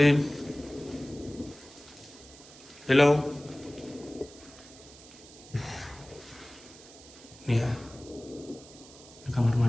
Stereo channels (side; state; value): right; noise; hiss, 20 dB below the sound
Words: Hello. Nih ya, ini kamar